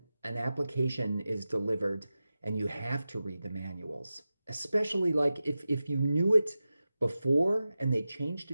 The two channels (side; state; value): both; inverted; correlation -0.94